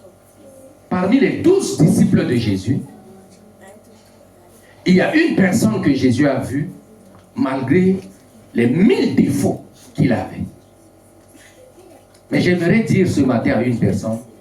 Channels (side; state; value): both; identical; correlation 1.00